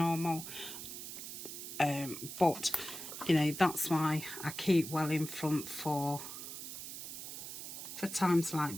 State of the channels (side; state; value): right; noise; hiss, 8 dB below the sound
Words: but you know, that's why I keep well in front for times like